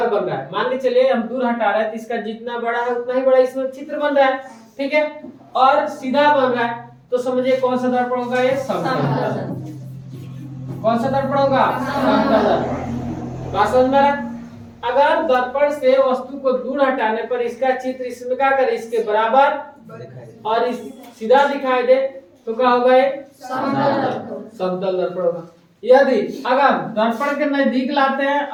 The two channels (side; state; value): both; identical; correlation 1.00